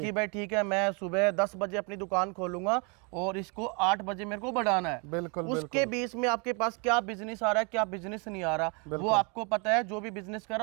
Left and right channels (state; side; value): quieter; left; 33.7 dB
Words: भाई ठीक है, मैं सुबह 10 बजे अपनी दुकान खोलूंगा और इसको 8 बजे मेरे को बढ़ाना है। बिल्कुल। उसके बीच में आपके पास क्या बिजनेस आ रहा है, क्या बिजनेस नहीं आ रहा, वो आपको पता है। जो भी बिजनेस